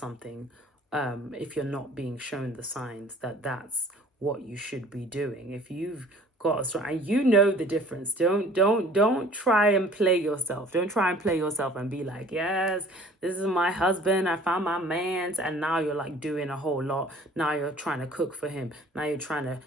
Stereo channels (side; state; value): both; normal; correlation 0.51